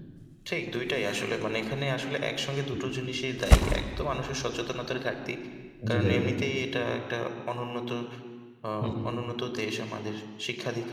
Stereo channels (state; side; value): identical; both; correlation 1.00